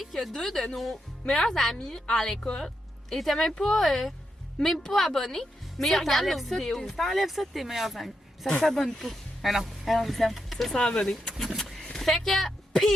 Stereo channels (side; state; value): both; normal; correlation 0.84